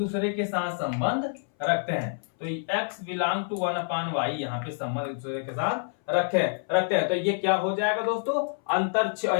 के साथ संबंध रखते हैं। तो x बिलोंग टू 1/y, यहाँ पे संबंध एक दूसरे के साथ रखते हैं। तो ये क्या हो जाएगा दोस्तों, अंतर,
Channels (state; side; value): silent; right; 60 dB below the other